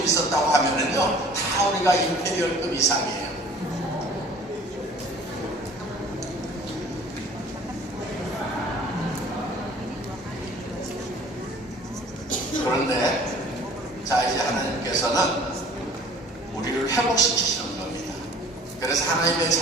있었다고 하면은요 다 우리가 임페리얼급 이상이에요. 그런데 자 이제 하나님께서는 우리를 회복시키시는 겁니다. 그래서 하나님의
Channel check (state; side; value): normal; both; correlation 0.49